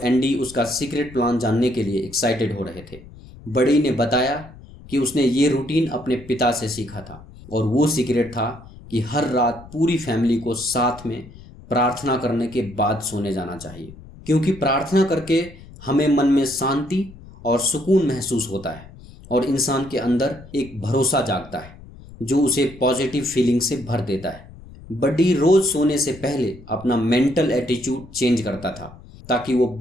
एंडी उसका सीक्रेट प्लान जानने के लिए एक्साइटेड हो रहे थे। बड़ी ने बताया कि उसने ये रूटीन अपने पिता से सीखा था और वो सीक्रेट था कि हर रात पूरी फैमिली को साथ में प्रार्थना करने के बाद सोने जाना चाहिए, क्योंकि प्रार्थना करके हमें मन में शांति और सुकून महसूस होता है और इंसान के अंदर एक भरोसा जागता है जो उसे पॉजिटिव फीलिंग से भर देता है। बड्डी रोज सोने से पहले अपना मेंटल एटीट्यूड चेंज करता था ताकि वो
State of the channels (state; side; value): noise; left; rumble, 19 dB below the sound